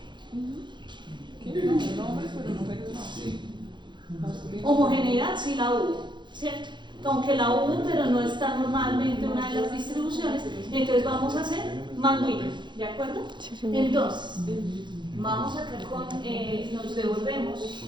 Homogeneidad sí la hubo, ¿cierto? Aunque la hubo, pero no está normalmente una de las distribuciones, entonces vamos a hacer Mann-Whitney, ¿de acuerdo? Entonces, vamos acá con, nos devolvemos,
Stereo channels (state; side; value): late; left; 0.22 ms